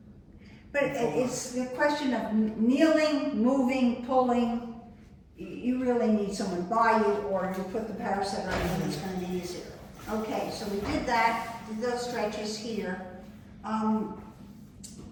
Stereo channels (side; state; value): both; identical; correlation 1.00